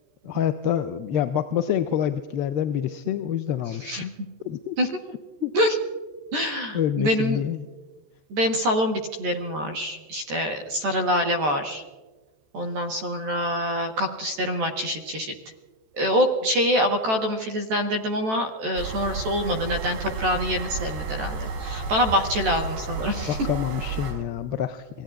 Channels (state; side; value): late; left; 14 ms